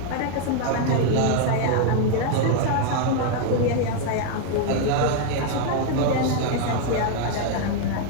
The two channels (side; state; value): both; different; correlation 0.00